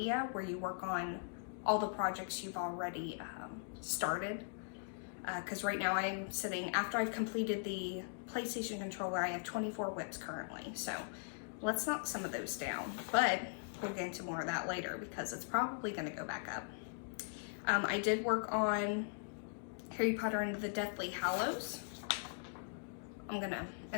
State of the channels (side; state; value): right; silent; digital silence